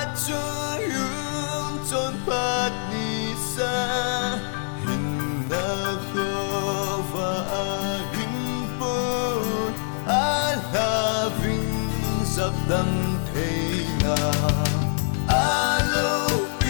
trôi yun trốn phát ni xa hình na khô và a hình bồn a la vinh dập đâm thế nào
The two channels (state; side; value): silent; right; 62 dB below the other